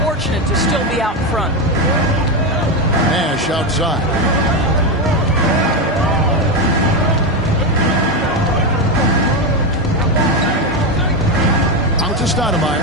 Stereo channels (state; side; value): normal; both; correlation 0.11